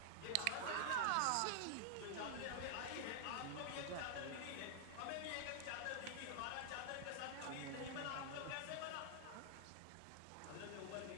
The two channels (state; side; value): different; both; correlation -0.01